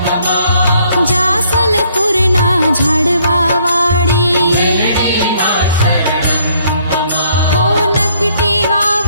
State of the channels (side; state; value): both; inverted; correlation -0.66